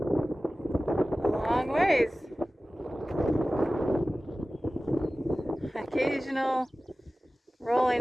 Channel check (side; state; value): both; normal; correlation 0.96